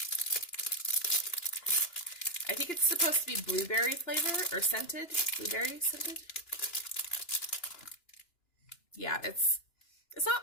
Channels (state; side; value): late; right; 2.9 ms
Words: I think it's supposed to be blueberry flavor or scented. Blueberry scented. Yeah, it's